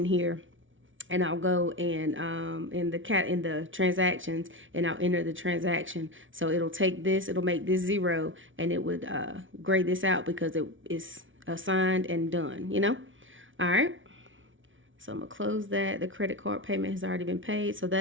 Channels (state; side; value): late; left; 0.57 ms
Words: here and I'll go and in the transactions, and I'll enter the transaction. So it'll take this, it'll make this 0, and it would grade this out because it is assigned and done, you know? All right. So I'm gonna close that. The credit card payment has already been paid. So